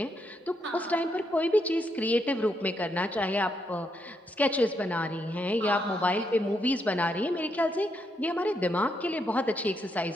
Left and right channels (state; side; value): normal; both; correlation 0.79